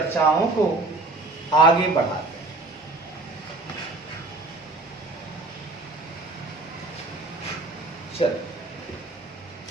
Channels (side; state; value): left; quieter; 3.2 dB